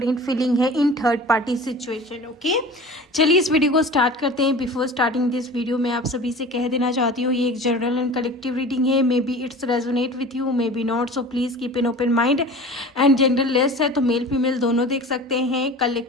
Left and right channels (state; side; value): normal; both; correlation 0.39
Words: फीलिंग है in third party situation. Okay, चलिए इस वीडियो को स्टार्ट करते हैं। बिफोर स्टार्टिंग दिस वीडियो मैं आप सभी से कह देना चाहती हूँ ये एक जनरल एंड कलेक्टिव रीडिंग है। May be it's resonate with you, may be not, so please keep an open mind. And gender less है तो मेल फीमेल दोनों देख सकते हैं।